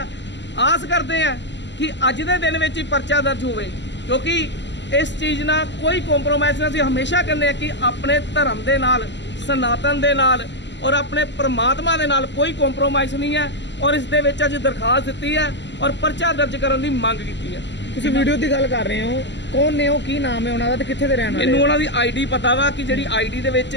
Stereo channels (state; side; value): late; right; 0.52 ms